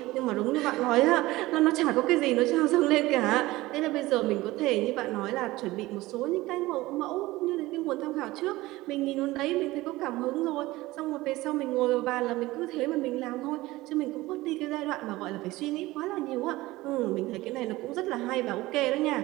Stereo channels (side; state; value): left; quieter; 18.8 dB